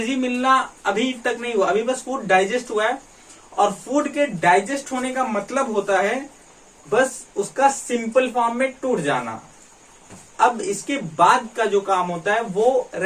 मिलना अभी तक नहीं हुआ, अभी बस फूड डाइजेस्ट हुआ है। और फूड के डाइजेस्ट होने का मतलब होता है बस उसका सिंपल फॉर्म में टूट जाना। अब इसके बाद का जो काम होता है वो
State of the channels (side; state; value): both; identical; correlation 1.00